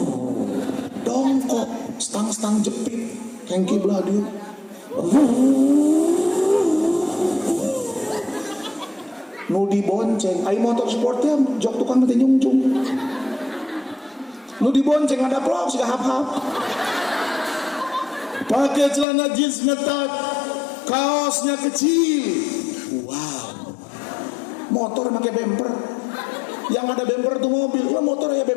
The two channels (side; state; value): right; drops out; at 19.1 s